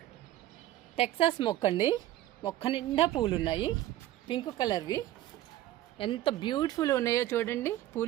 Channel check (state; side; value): quieter; left; 14.2 dB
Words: టెక్సాస్ మొక్క అండి, మొక్క నిండా పూలు ఉన్నాయి, పింక్ కలర్వి. ఎంత బ్యూటిఫుల్ ఉన్నాయో చూడండి